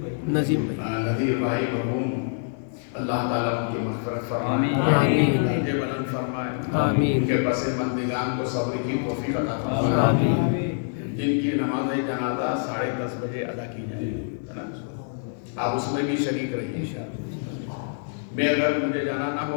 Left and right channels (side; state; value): right; silent; digital silence